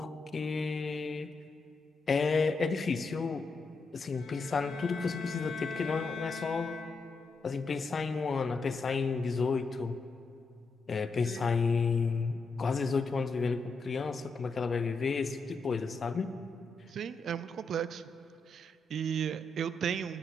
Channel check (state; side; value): quieter; right; 3.3 dB